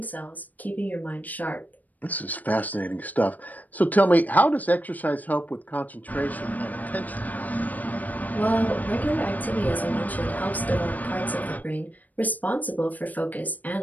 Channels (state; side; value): late; right; 0.080 ms